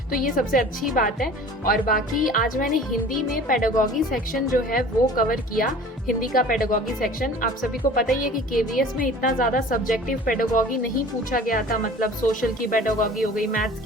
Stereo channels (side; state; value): both; normal; correlation 0.44